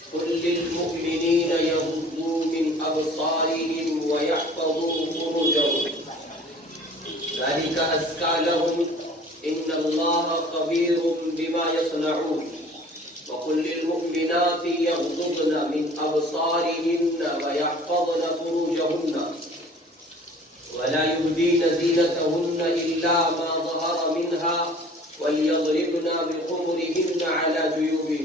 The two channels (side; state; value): both; normal; correlation 0.48